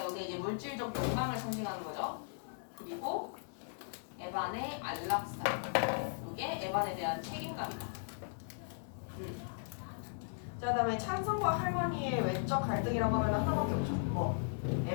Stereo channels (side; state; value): right; silent; digital silence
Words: 여기 이제 물질적 욕망을 상징하는 거죠. 그리고 에반의 안락사. 이게 에반에 대한 책임감이다. 자, 그다음에 찬성과 할머니의 외적 갈등이라고 하면 하나밖에 없죠. 뭐